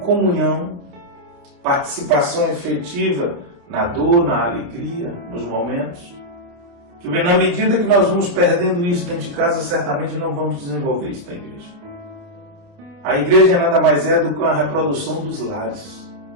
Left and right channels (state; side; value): late; left; 29 ms